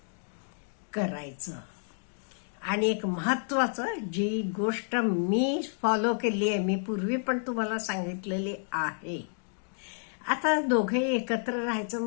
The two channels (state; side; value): silent; right; digital silence